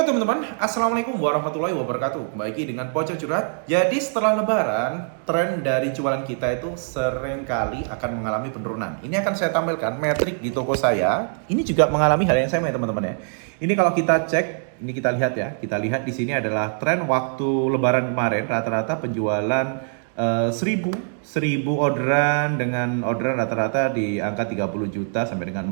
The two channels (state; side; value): silent; left; 61 dB below the other